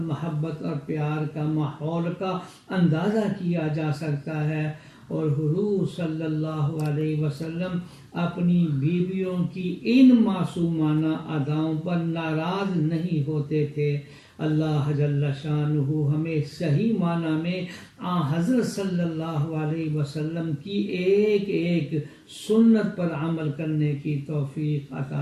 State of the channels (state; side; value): identical; both; correlation 1.00